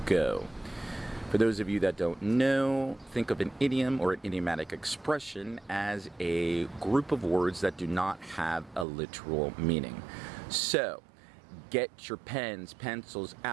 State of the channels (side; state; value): left; drops out; at 8.8 s